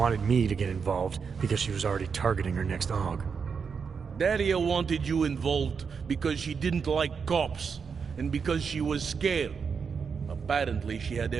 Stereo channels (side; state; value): left; quieter; 5.9 dB